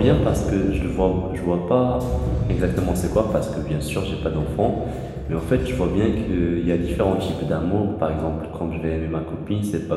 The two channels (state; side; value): identical; both; correlation 1.00